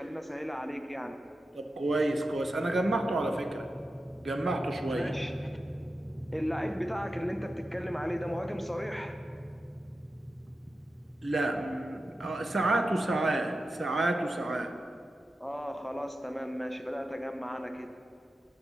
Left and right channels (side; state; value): both; normal; correlation 0.92